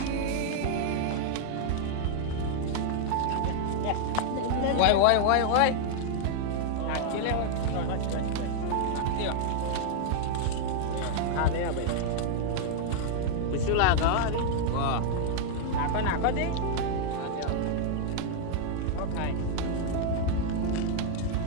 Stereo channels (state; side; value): different; both; correlation -0.01